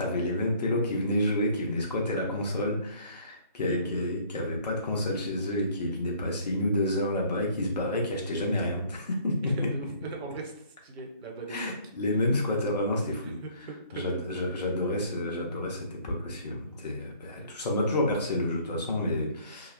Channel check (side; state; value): both; inverted; correlation -0.57